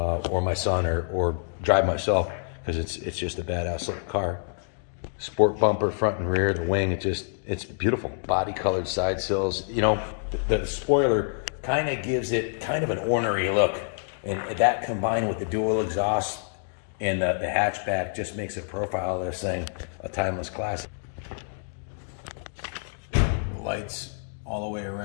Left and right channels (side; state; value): right; silent; digital silence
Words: my son, or drive myself, because it's just a badass looking car. Sport bumper, front and rear, the wing, it's beautiful. Body colored side sills. You know, the spoiler kind of gives it kind of an ornery look, and that combined with the dual exhaust and the hatchback just makes a profile of this thing a timeless classic. The lights all the way